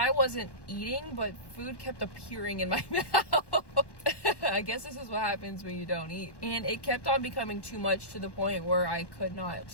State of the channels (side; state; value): right; late; 1.1 ms